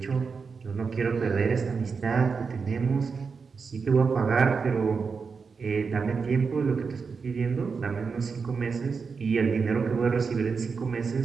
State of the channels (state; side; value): quieter; left; 5.2 dB